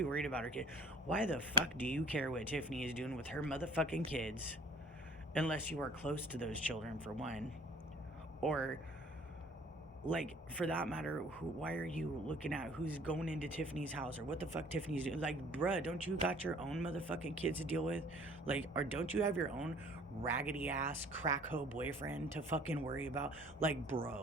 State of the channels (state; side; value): normal; both; correlation 0.52